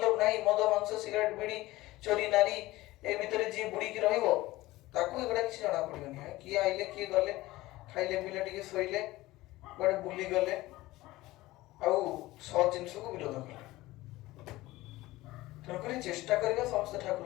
ନାହିଁ, ମଦ ମାଂସ ସିଗାରେଟ ବିଡି ଚୋରି ନାରୀ ଏ ଭିତରେ ଯିଏ ବୁଡିକି ରହିବ ତାକୁ ଏଗୁଡା କିଛି ଜଣା ପଡିବନି। କିଏ ଆଇଲେ କିଏ ଗଲେ, ଖାଇଲେ ପିଇଲେ ଟିକେ ଶୋଇଲେ, କୁଆଡେ ବୁଲି ଗଲେ, ଆଉ ସତ ଜିନିଷକୁ ବିରୋଧ କଲେ। ତେଣୁକରି ଚେଷ୍ଟା କରିବା ସମସ୍ତେ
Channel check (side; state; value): right; quieter; 18.2 dB